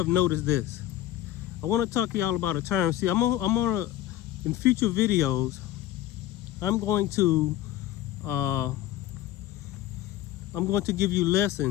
noticed this. I want to talk to y'all about a time. See, in future videos, I'm going to give you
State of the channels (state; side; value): quieter; right; 13.5 dB